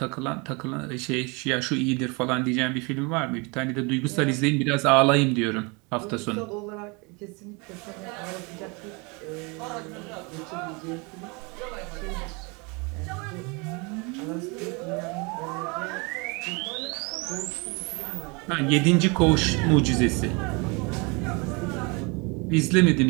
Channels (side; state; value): left; quieter; 29.4 dB